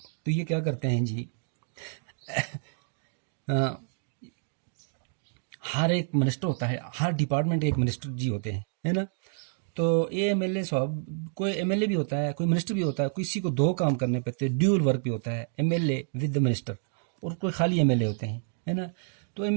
तो ये क्या करते हैं जी, हर एक मिनिस्टर होता है, हर डिपार्टमेंट एक मिनिस्टर जी होते हैं, है ना। तो ये एमएलए साहब, कोई एमएलए भी होता है, कोई मिनिस्टर भी होता है, किसी को दो काम करने पड़ते हैं, ड्यूल वर्क भी होता है, एमएलए विद द मिनिस्टर, और कोई खाली एमएलए होते हैं, है ना। तो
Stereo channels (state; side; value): silent; left; digital silence